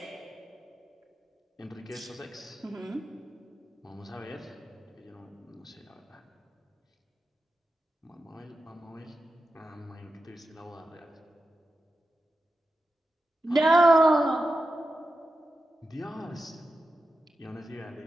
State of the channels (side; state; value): both; normal; correlation 0.90